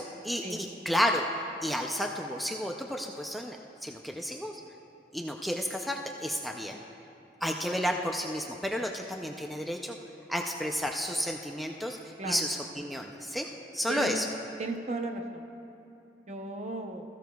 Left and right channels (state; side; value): normal; both; correlation 0.74